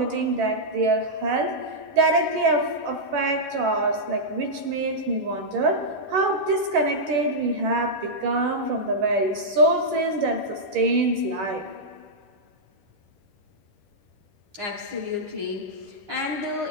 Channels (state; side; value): late; left; 10 ms